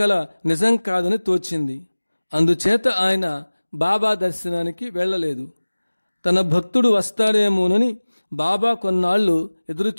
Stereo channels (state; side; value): inverted; both; correlation -1.00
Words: నిజం కాదని తోచింది. అందుచేత ఆయన బాబా దర్శనానికి వెళ్ళలేదు. తన భక్తుడు వస్తాడేమోనని బాబా కొన్నాళ్లు